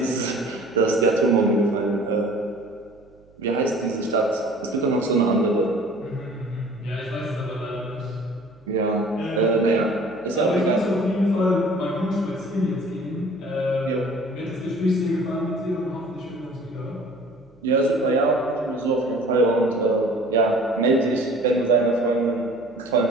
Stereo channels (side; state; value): right; noise; hum, 29 dB below the sound